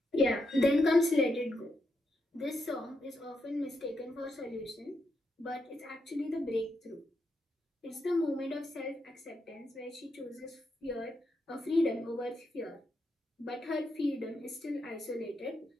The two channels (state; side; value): normal; both; correlation 0.82